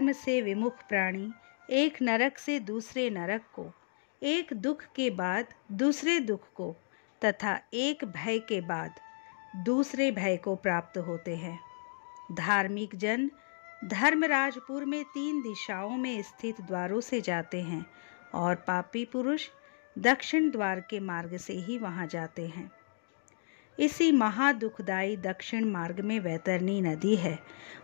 से विमुख प्राणी एक नरक से दूसरे नरक को, एक दुख के बाद दूसरे दुख को तथा एक भय के बाद दूसरे भय को प्राप्त होते हैं। धार्मिक जन धर्मराजपुर में 3 दिशाओं में स्थित द्वारों से जाते हैं और पापी पुरुष दक्षिण द्वार के मार्ग से ही वहां जाते हैं। इसी महादुखदायी दक्षिण मार्ग में वैतरणी नदी है।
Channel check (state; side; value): silent; right; digital silence